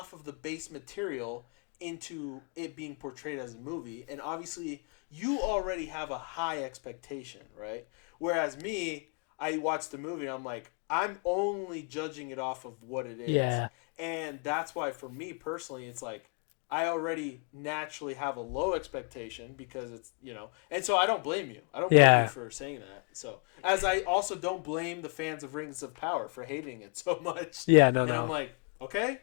of the base material into it being portrayed as a movie, and obviously you already have a high expectation, right? Whereas me, I watched the movie and I'm like, I'm only judging it off of what it is, and that's why for me personally, it's like I already naturally have a low expectation because it's, and so I don't blame you. I don't blame you for saying that. So, as I also don't blame the fans of Rings of Power for hating it so much. Yeah, no. I'm like, okay,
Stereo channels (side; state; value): right; quieter; 36.9 dB